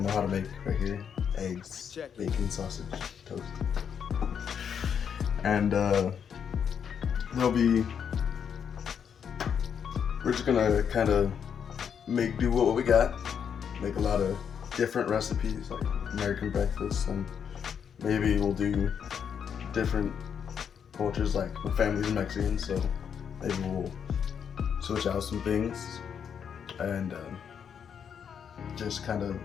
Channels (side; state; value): right; quieter; 7.6 dB